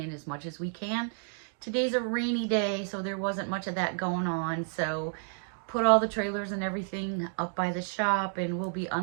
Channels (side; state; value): left; silent; 57 dB below the other